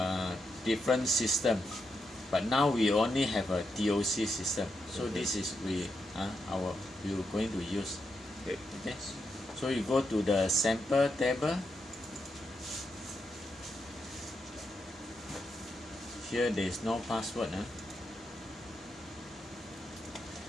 different system, but now we only have a TOC system. So this is we are going to use. Okay. So you go to the sample table. Here there is no password.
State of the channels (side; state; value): both; normal; correlation 0.84